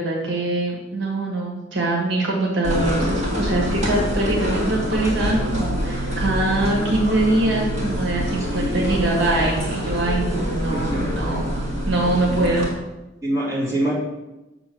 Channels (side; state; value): both; normal; correlation 0.52